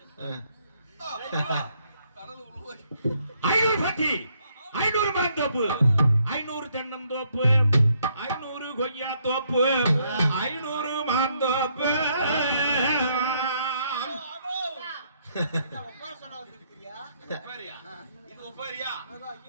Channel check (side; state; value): both; inverted; correlation -0.72